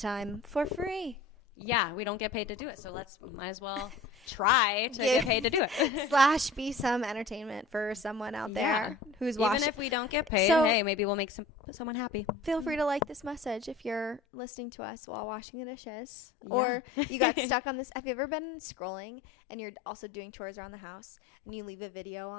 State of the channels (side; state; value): right; drops out; at 14.2 s